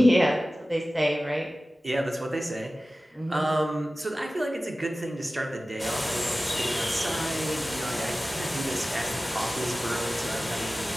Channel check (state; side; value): normal; both; correlation 0.96